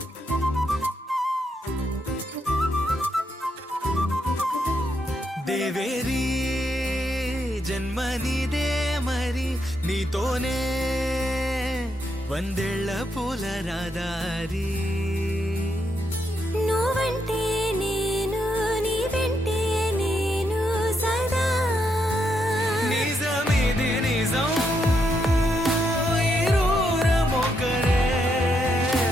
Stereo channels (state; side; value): normal; both; correlation 0.79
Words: దేవేరి జన్మనిదే మరి, నీతోనే వందేళ్ల పూల రాదారి. నువ్వంటే నేను, నీ వెంటే నేను సదా. నిజమిది నిజం, ఇరువురమొకరే